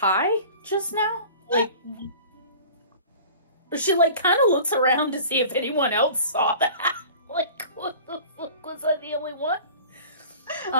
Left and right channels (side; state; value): both; inverted; correlation -0.42